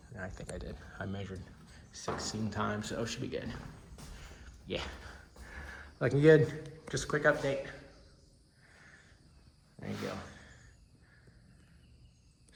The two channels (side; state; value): both; identical; correlation 1.00